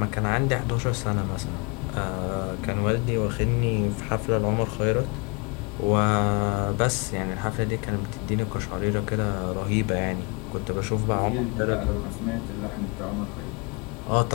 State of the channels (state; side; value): quieter; right; 31.6 dB